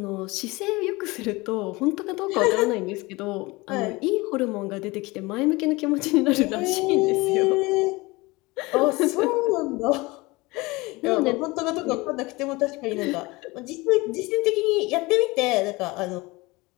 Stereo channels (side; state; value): right; quieter; 22.9 dB